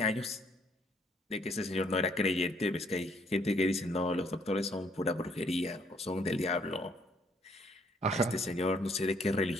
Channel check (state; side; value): normal; both; correlation 0.66